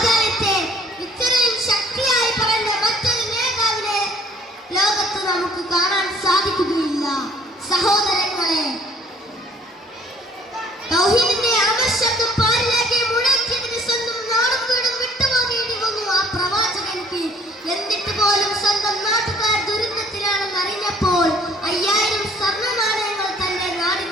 ഇത്രയും ശക്തിയായി പറഞ്ഞ മറ്റൊരു നേതാവിനെ ലോകത്ത് നമുക്ക് കാണാൻ സാധിക്കുകയില്ല. സഹോദരങ്ങളെ, തൗഹീദിന്റെ ആവശ്യത്തും പാരിലേക്ക് മുഴക്കിയതിന് സ്വന്തം നാടും വീടും വിട്ടുപോകേണ്ടി വന്നു ആ പ്രവാചകർക്ക്. എന്നിട്ട് പോലും സ്വന്തം നാട്ടുകാർ ദുരന്തത്തിലാണെന്ന് അറിഞ്ഞപ്പോൾ 5000 സ്വർണ്ണ നാണയങ്ങൾ തന്റെ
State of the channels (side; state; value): both; normal; correlation 0.59